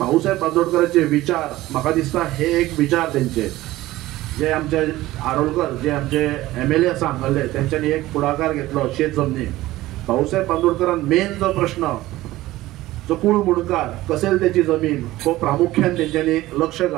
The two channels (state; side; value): quieter; left; 16.9 dB